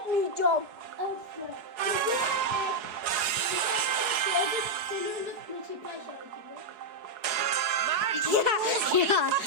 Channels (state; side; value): late; left; 4.7 ms